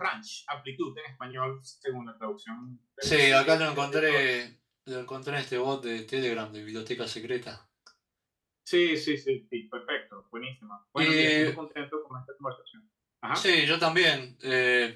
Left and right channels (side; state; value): both; identical; correlation 1.00